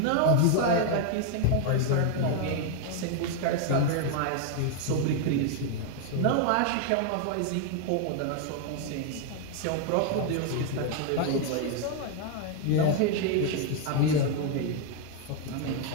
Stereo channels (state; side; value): different; both; correlation 0.00